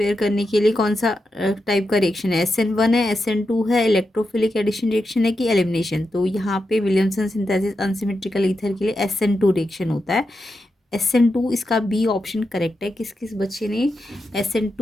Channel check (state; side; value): normal; both; correlation 0.88